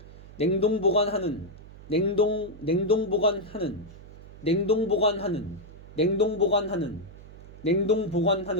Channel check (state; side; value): noise; right; hum, 18 dB below the sound